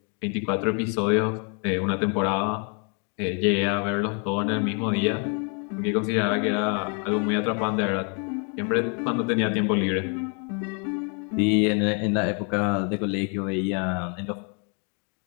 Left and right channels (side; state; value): right; quieter; 38.9 dB